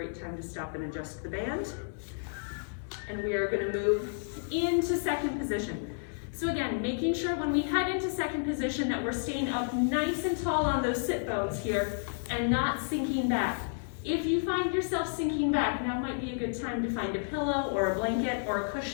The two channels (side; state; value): right; silent; 57 dB below the other